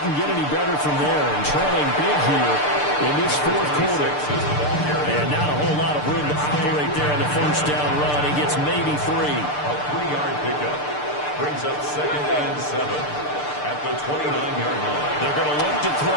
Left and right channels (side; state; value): right; late; 6.7 ms